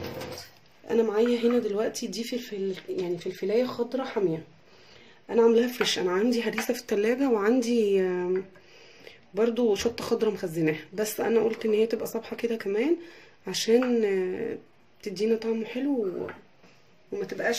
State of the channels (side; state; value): both; identical; correlation 1.00